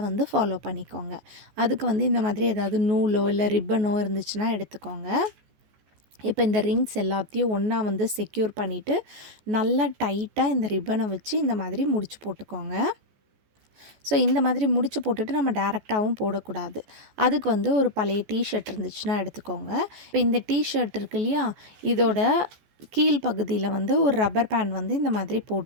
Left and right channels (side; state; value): left; late; 14 ms